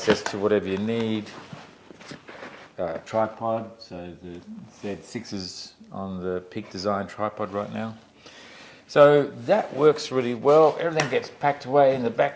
to whatever you need. Tripod, so the Z6 is on the Peak Design tripod right now. So that works really well. Everything gets packed away in the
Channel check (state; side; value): identical; both; correlation 1.00